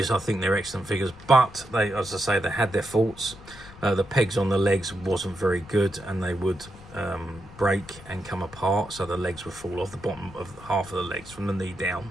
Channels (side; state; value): left; noise; rumble, 19 dB below the sound